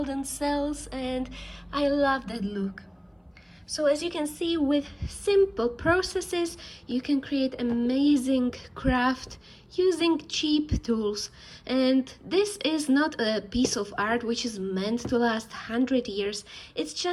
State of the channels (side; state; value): both; identical; correlation 1.00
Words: cells, and I love that look. So as you can see, with simple processes, you can create amazing craft using cheap tools. And this is not a piece of art which is meant to last 100 years. It's